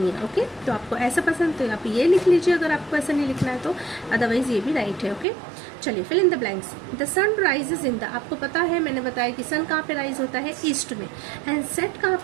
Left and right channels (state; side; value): drops out; left; at 5.2 s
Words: है। ओके, तो आपको ऐसा पसंद तो आप ये लिख लीजिए, अगर आपको ऐसा नहीं लिखना है तो, अदरवाइज ये भी राइट है। ओके, चलिए, fill in the blanks. The sun rises in the, आपको पता है, मैंने बताया कि सन कहाँ पे राइज होता है? ईस्ट में, एंड सेट कहाँ